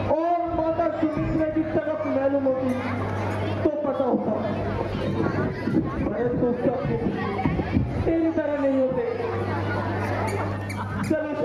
और माता सुमित्रा की तरफ मालूम होती तो पता होता, परंतु सब तेरी तरह नहीं होते। चलो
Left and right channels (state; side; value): identical; both; correlation 1.00